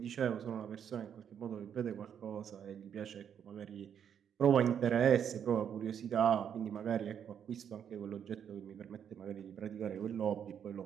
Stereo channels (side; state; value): left; quieter; 8.4 dB